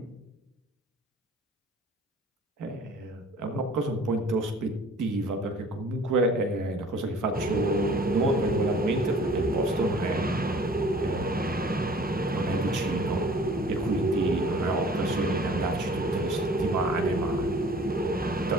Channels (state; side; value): normal; both; correlation 0.50